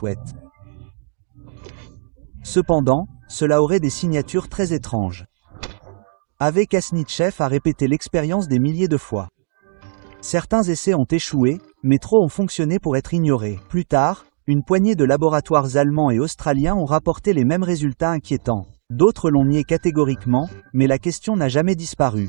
Cependant, cela aurait des signatures très étranges. Ave Kasnitchev a répété l'expérience des milliers de fois. Certains essais ont échoué, mais trop ont fonctionné pour être ignorés. Plus tard, une poignée de laboratoires allemands et australiens ont rapporté les mêmes résultats inquiétants. D'autres l'ont nié catégoriquement, mais la question n'a jamais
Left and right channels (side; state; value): left; silent; digital silence